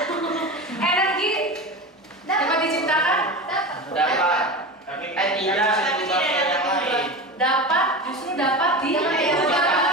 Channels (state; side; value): normal; both; correlation 0.27